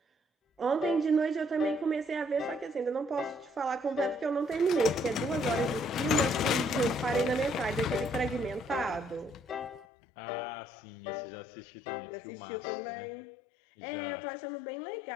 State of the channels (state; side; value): drops out; right; at 9.9 s